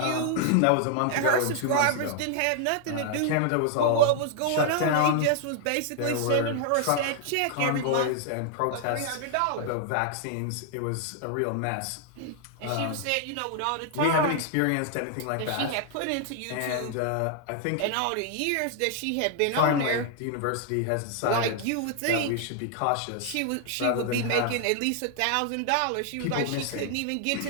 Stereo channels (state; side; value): different; both; correlation 0.00